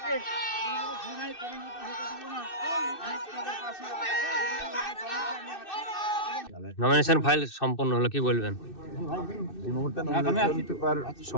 ঘৃণায় পরিণত হতে দেব না। নমিনেশন ফাইল সম্পন্ন হলো, কি বলবেন? এই মুহূর্তে নমিনেশন পেপার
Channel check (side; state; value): right; late; 2.6 ms